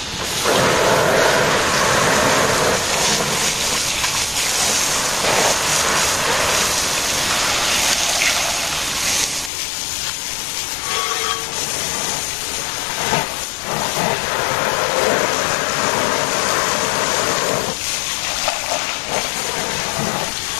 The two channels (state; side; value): drops out; right; at 9.5 s